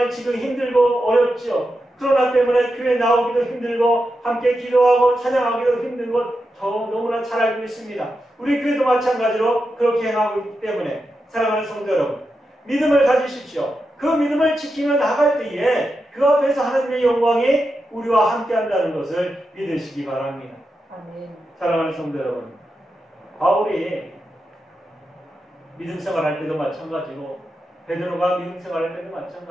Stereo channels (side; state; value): both; normal; correlation 0.88